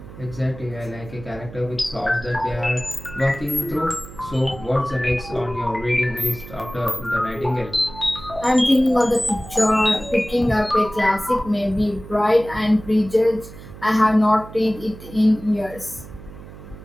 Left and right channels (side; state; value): right; noise; hum, 16 dB below the sound